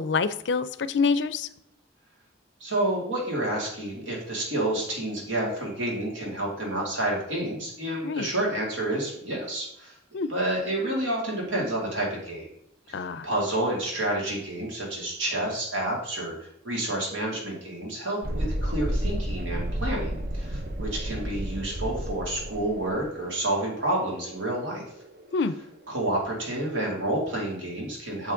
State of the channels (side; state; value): both; normal; correlation 0.16